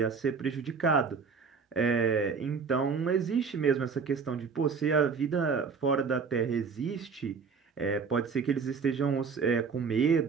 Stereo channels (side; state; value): left; quieter; 5.5 dB